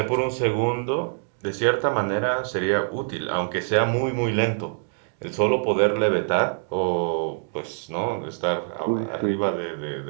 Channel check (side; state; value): left; silent; 62 dB below the other